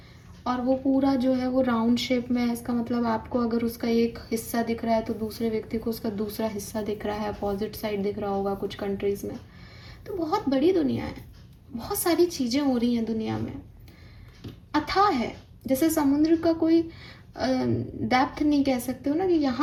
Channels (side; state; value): both; identical; correlation 1.00